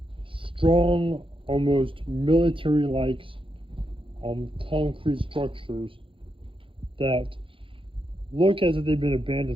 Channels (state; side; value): late; left; 0.25 ms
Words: strong, almost military-like concrete structures that look as if they've been